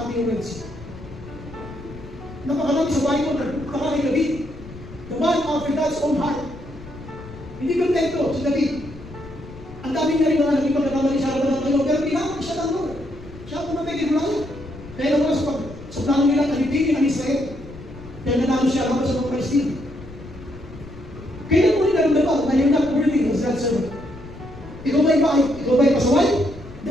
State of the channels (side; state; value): left; noise; rumble, 16 dB below the sound